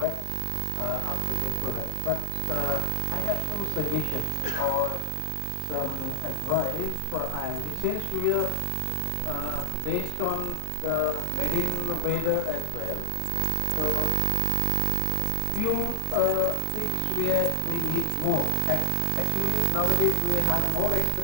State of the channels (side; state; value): both; different; correlation 0.00